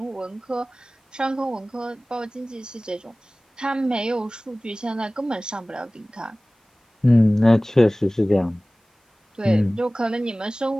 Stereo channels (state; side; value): normal; both; correlation 0.98